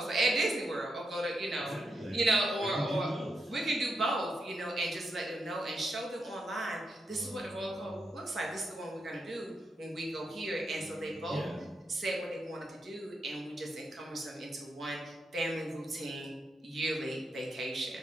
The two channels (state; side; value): normal; both; correlation 0.84